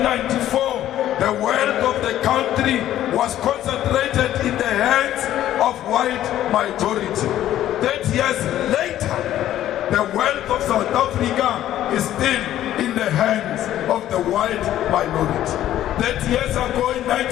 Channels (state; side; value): quieter; right; 12.6 dB